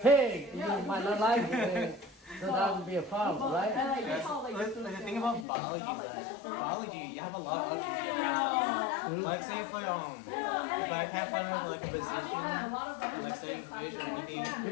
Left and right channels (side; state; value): right; drops out; at 5.5 s